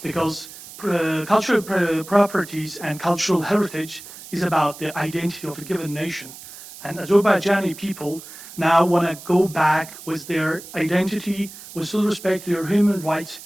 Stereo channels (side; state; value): right; noise; hiss, 16 dB below the sound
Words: because cultural properties and cultural heritage is about the identity of a given nation. And Azerbaijani people now want to go back with their identity, with full respect to their human rights,